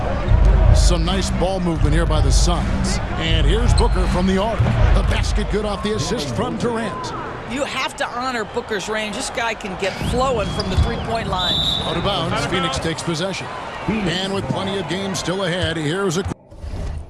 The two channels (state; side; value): identical; both; correlation 1.00